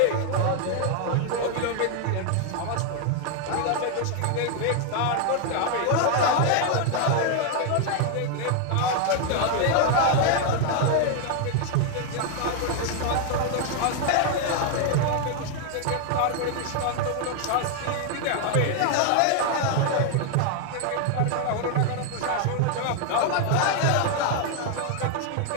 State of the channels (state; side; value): different; both; correlation 0.00